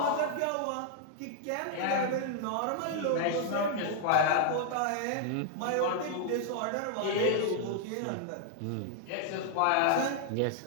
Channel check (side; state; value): both; different; correlation 0.00